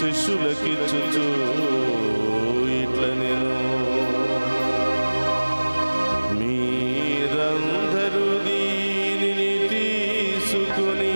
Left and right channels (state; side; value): inverted; both; correlation -1.00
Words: ఇట్ల నేను, మీరందరూ దీనిని